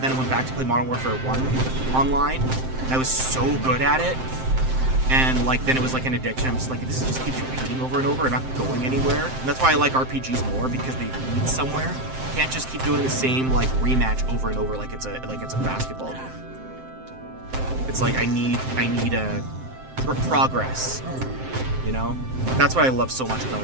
then I went back to play Modern Warfare 1 online, and I was so good at it. And like then it was like an addiction. I'm just like, this just keeps repeating over and over and not going anywhere. And that's why I like RPGs more, because they lead somewhere. You can't just keep doing the same like rematch over and over like it's a basketball game. It's like I need a progress, you know? That's what I love so much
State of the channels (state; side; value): late; left; 7.7 ms